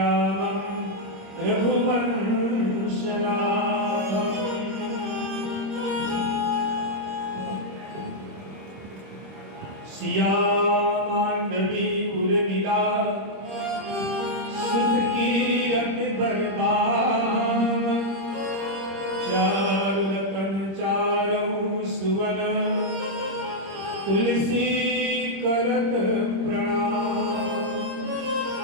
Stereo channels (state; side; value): late; left; 26 ms